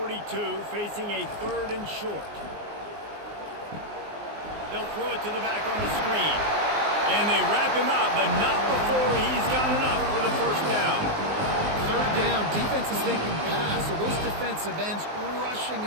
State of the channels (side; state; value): left; late; 20 ms